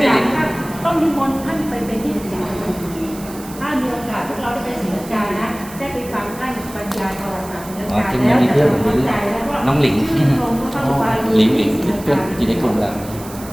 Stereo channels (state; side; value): noise; right; hiss, 17 dB below the sound